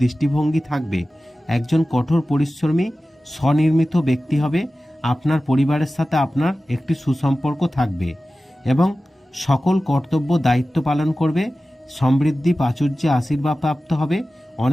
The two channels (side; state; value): both; normal; correlation 0.95